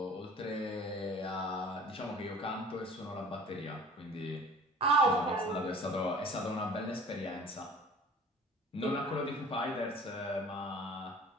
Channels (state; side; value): normal; both; correlation 0.46